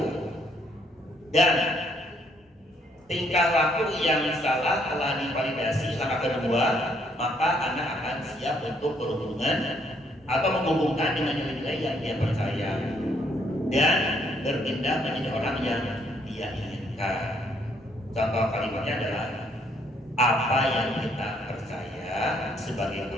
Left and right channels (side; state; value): both; normal; correlation 0.69